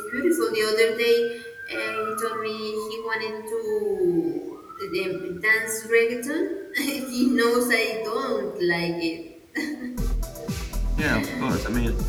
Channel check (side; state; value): both; identical; correlation 1.00